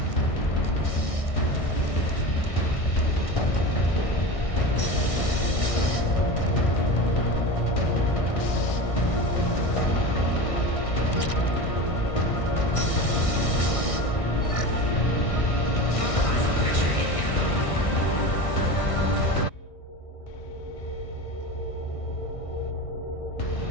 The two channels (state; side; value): late; right; 1.6 ms